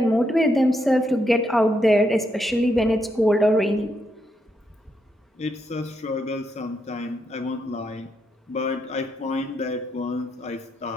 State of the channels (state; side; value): normal; both; correlation 0.80